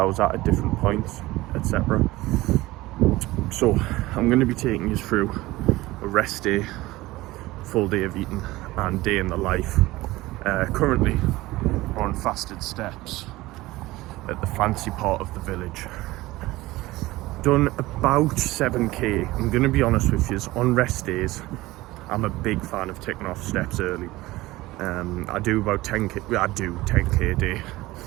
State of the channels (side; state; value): left; quieter; 18.8 dB